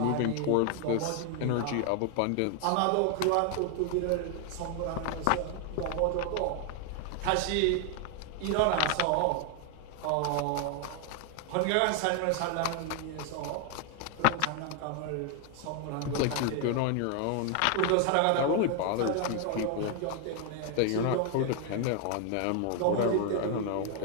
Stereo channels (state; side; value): different; both; correlation 0.00